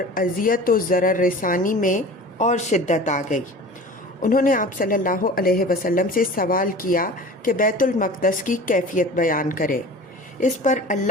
اذیت و ضرر رسانی میں اور شدت آ گئی۔ انہوں نے آپ صلی اللہ علیہ وسلم سے سوال کیا کہ بیت المقدس کی کیفیت بیان کرے۔ اس پر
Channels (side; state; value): both; normal; correlation 0.38